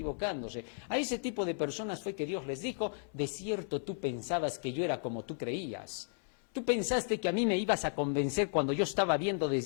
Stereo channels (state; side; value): silent; right; 55 dB below the other